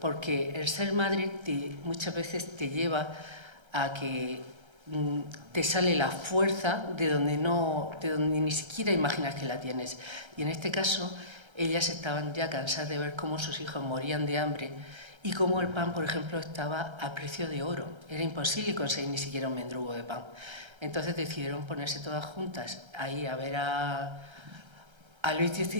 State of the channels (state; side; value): late; left; 1.3 ms